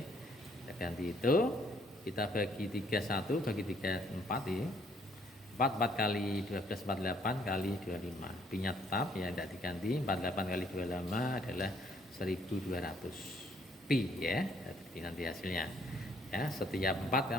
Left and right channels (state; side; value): normal; both; correlation 0.66